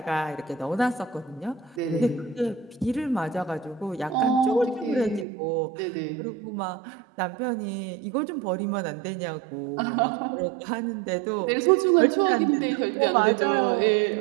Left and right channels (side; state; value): left; drops out; at 5.2 s